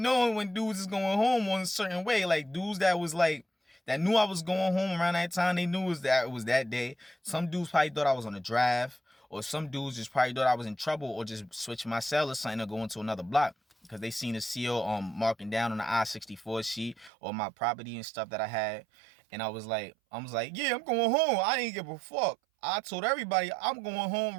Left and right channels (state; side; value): drops out; left; at 17.1 s